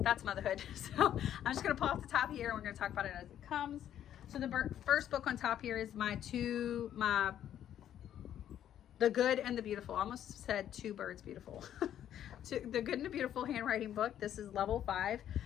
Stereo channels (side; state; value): right; quieter; 10.7 dB